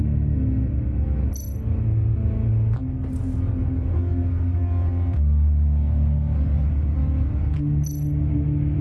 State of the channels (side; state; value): both; identical; correlation 1.00